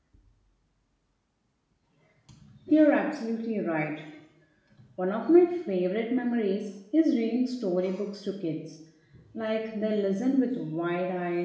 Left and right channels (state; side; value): identical; both; correlation 1.00